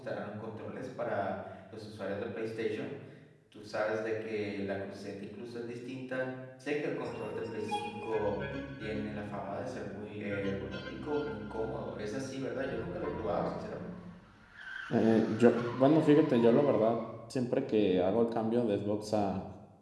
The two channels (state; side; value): identical; both; correlation 1.00